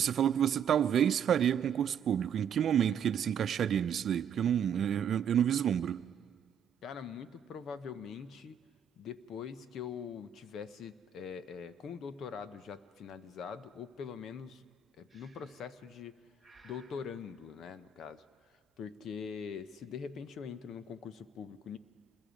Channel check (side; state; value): left; quieter; 7.0 dB